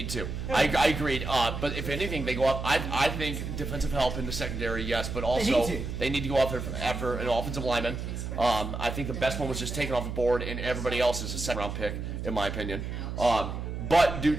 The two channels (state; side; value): noise; right; hum, 5 dB below the sound